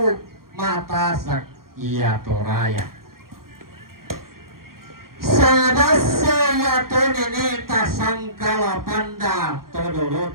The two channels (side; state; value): left; late; 0.92 ms